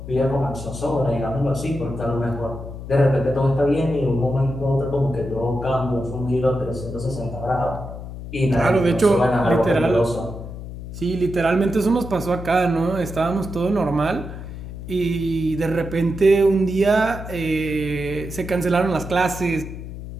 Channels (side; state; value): left; noise; hum, 10 dB below the sound